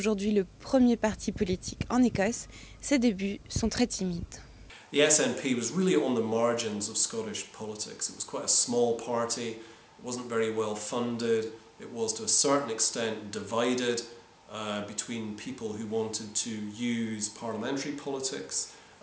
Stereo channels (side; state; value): both; identical; correlation 1.00